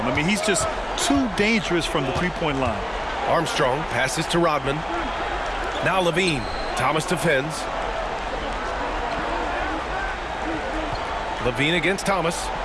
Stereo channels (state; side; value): identical; both; correlation 1.00